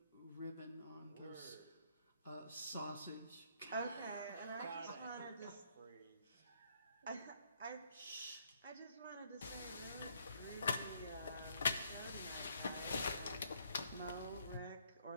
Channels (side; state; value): both; inverted; correlation -0.68